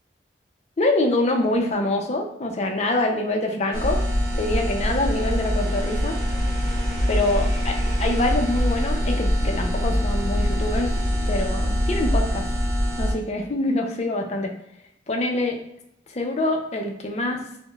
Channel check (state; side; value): normal; both; correlation 0.60